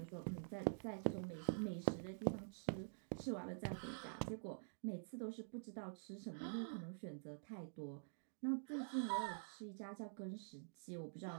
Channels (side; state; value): left; silent; digital silence